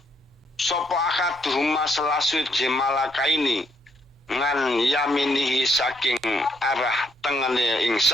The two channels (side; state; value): both; normal; correlation 0.73